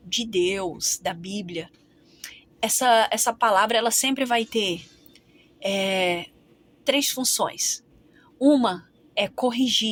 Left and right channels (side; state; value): both; identical; correlation 1.00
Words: de Deus, da Bíblia, essa palavra ela sempre vai ter 3 funções. Uma é